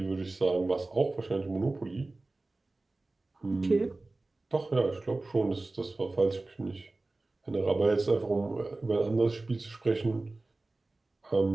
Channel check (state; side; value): quieter; left; 3.1 dB